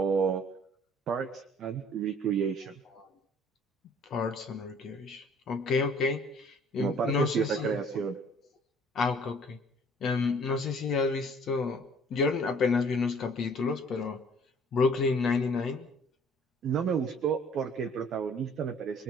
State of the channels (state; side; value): normal; both; correlation 0.54